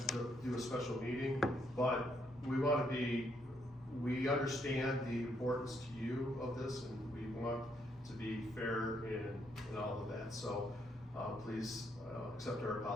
to do a special meeting, but we understand the importance to you of this, and we want to be fair in all of that. So, please, accept our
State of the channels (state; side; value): normal; both; correlation 0.74